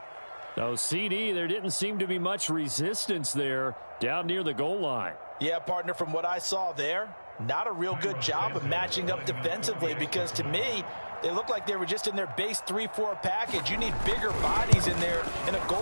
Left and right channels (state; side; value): inverted; both; correlation -1.00